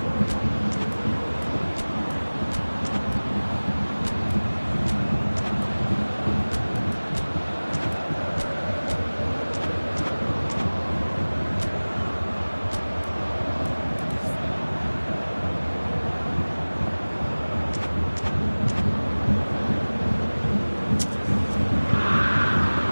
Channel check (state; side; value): inverted; both; correlation -1.00